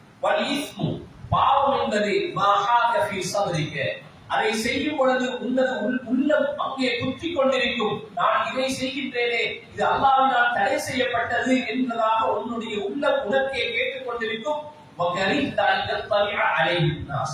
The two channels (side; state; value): both; identical; correlation 1.00